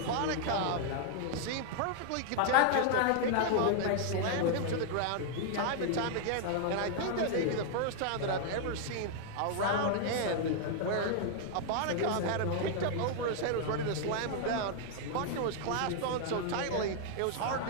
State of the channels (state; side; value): different; both; correlation -0.01